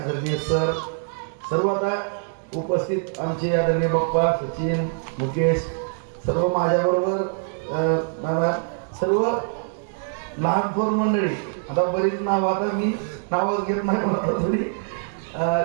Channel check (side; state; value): left; silent; 63 dB below the other